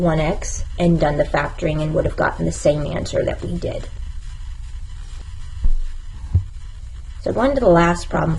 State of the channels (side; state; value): both; identical; correlation 1.00